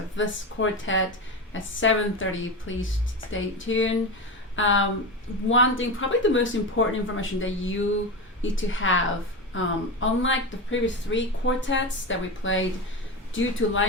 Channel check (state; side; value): normal; both; correlation 0.20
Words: this quartet at 7:30. Please stay tuned. One thing, probably the most important information that you need to have, unlike the previous 3 quartets that we played, due to